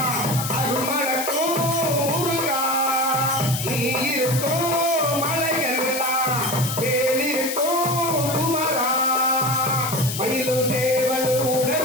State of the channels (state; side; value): noise; left; hiss, 5 dB below the sound